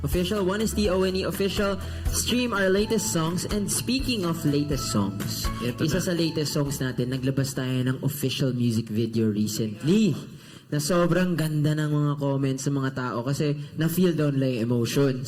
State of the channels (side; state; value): both; identical; correlation 1.00